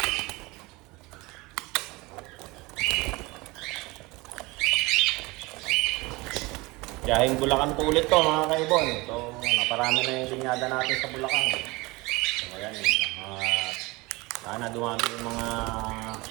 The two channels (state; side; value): quieter; left; 23.3 dB